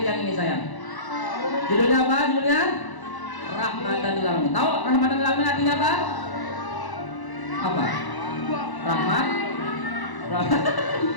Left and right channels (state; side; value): late; right; 1.0 ms